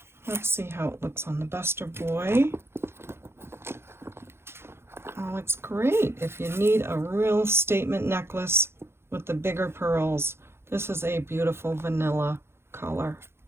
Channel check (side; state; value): left; late; 0.12 ms